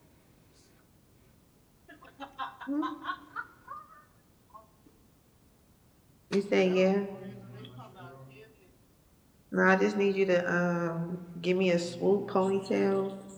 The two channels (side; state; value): both; identical; correlation 1.00